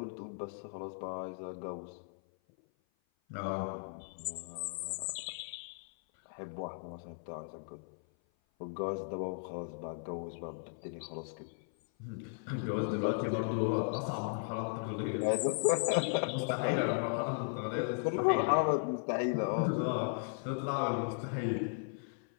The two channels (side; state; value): right; silent; 54 dB below the other